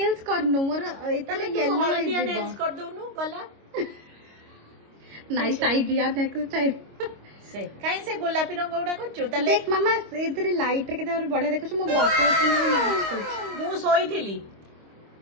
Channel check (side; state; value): left; late; 25 ms